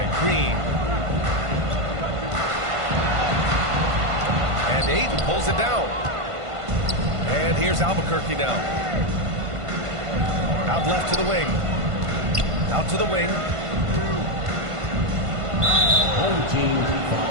Green. And Ayton pulls it down. And here's Albuquerque now. Out left to the wing. Out to the wing. Home team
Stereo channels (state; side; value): late; left; 1.5 ms